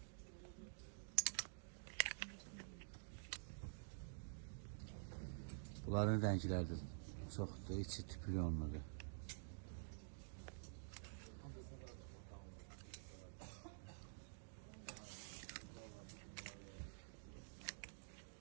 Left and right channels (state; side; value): silent; left; digital silence